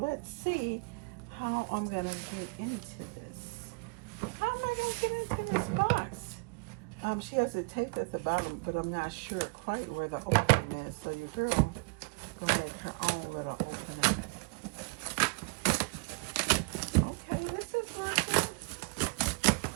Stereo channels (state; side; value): quieter; left; 31.7 dB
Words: see how I'm gonna get into this. How am I gonna get into this box? She has it taped at the bottom, but I'm not sure quite where the opening is. So you heard me go make her own little opening. Okay, this is working.